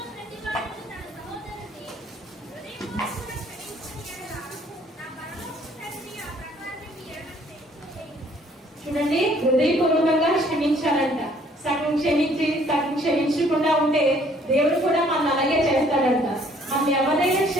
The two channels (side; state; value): both; normal; correlation 0.61